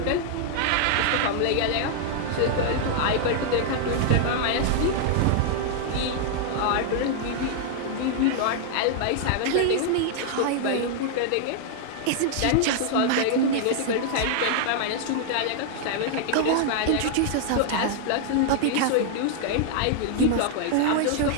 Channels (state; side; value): different; both; correlation 0.00